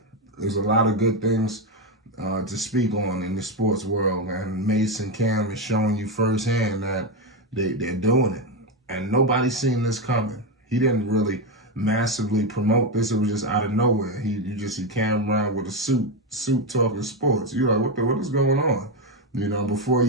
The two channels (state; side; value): normal; both; correlation 0.09